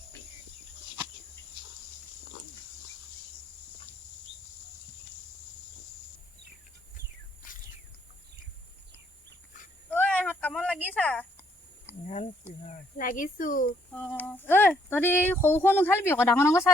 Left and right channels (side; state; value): both; normal; correlation 0.69